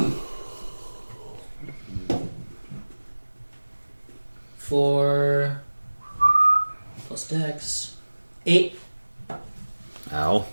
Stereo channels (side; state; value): both; inverted; correlation -1.00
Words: For plus dex 8, Ow.